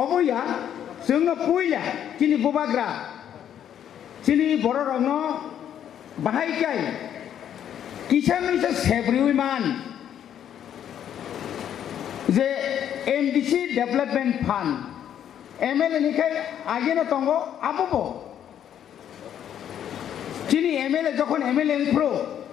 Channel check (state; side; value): quieter; right; 9.8 dB